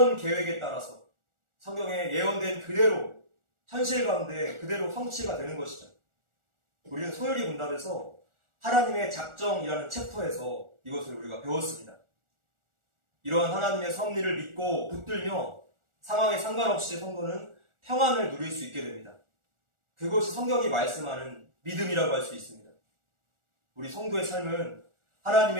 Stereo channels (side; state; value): left; late; 1.4 ms